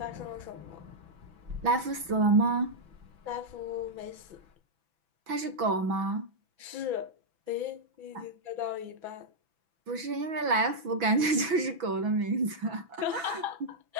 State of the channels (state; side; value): late; left; 6.0 ms